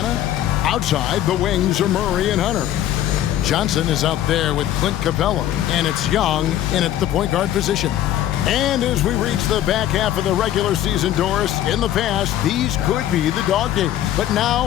outside, the wings are Murray and Hunter. Johnson is out there with Clint Capella, and it's Young in at the point guard position. And as we reach the back half of the regular season, Doris, in the past, these could be the dog days. But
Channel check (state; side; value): quieter; right; 12.2 dB